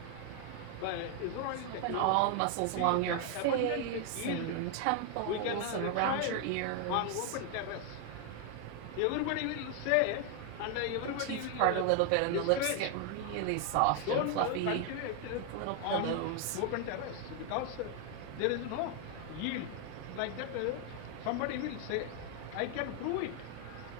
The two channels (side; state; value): both; different; correlation 0.01